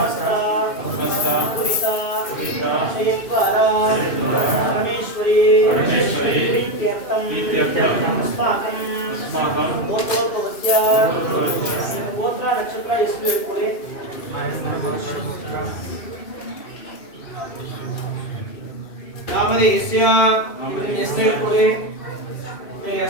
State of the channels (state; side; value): late; right; 2.6 ms